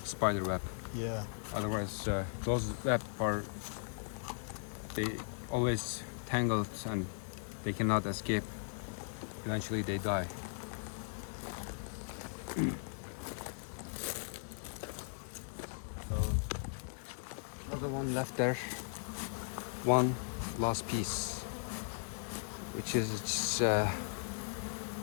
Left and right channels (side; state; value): right; silent; digital silence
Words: spider web. Yeah. Otherwise, those web they always tangled and they cannot escape. Eventually, they die. So, other one left there. One last piece, which is